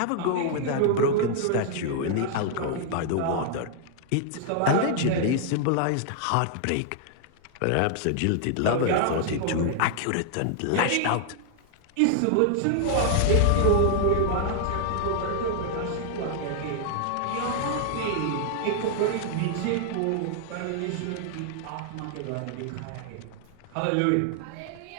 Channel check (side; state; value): both; different; correlation -0.01